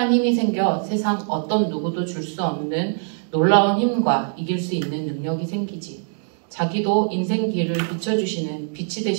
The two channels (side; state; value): left; silent; digital silence